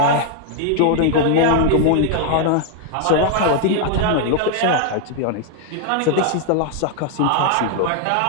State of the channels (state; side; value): different; both; correlation 0.00